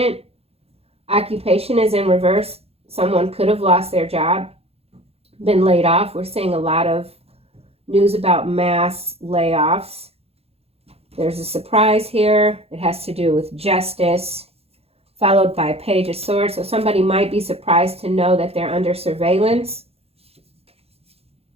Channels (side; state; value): left; late; 0.29 ms